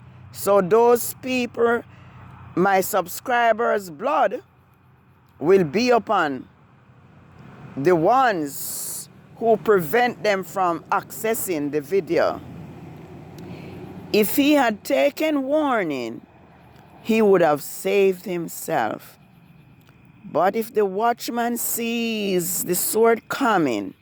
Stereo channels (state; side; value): identical; both; correlation 1.00